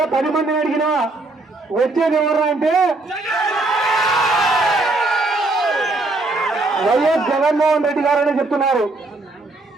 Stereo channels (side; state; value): left; quieter; 3.1 dB